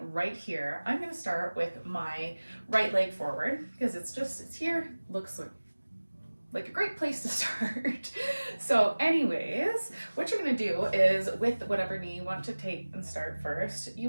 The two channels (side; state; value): both; inverted; correlation -1.00